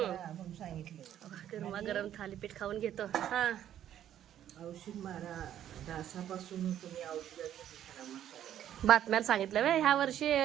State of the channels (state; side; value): quieter; left; 11.0 dB